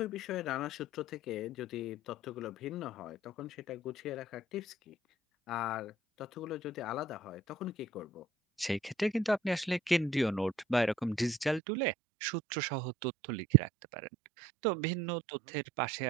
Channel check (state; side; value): drops out; left; at 11.6 s